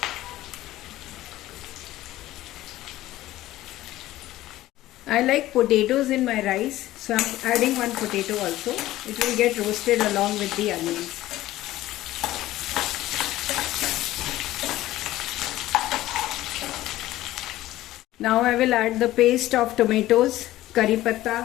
I like potatoes in my rice, so I am adding 1 potato also. It will get roasted along with the onions. Now I will add the paste of tomatoes, curry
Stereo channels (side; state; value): right; quieter; 15.6 dB